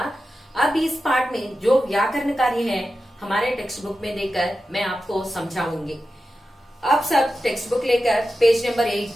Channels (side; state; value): both; normal; correlation 0.92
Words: अब इस पाठ में जो व्याकरण कार्य है हमारे टेक्स्ट बुक में देकर मैं आपको समझाऊंगी। आप सब टेक्स्ट बुक लेकर पेज नंबर